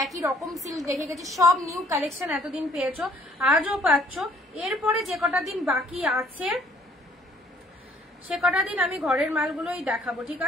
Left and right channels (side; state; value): both; normal; correlation 0.60